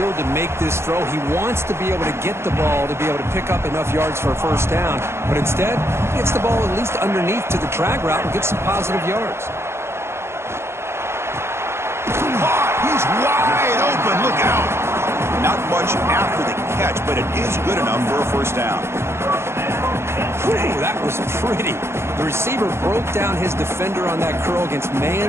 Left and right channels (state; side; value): late; left; 0.12 ms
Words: to make this throw. He wants to be able to get the ball to be able to pick up enough yards for a first down. But instead, he gets the ball at least underneath to the drag route and gets some positive yards. He's wide open. Look out. Not much after the catch, but it is good enough for a first down. Whew, that was pretty. The receiver broke down his defender on that curl against